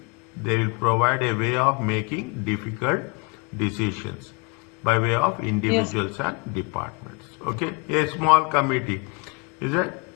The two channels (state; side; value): quieter; right; 30.2 dB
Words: provide a way of making difficult decisions by way of Yes. individuals and departments. Okay, a small committee, is it?